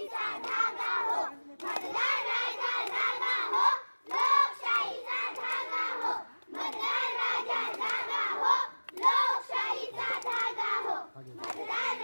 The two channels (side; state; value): both; inverted; correlation -1.00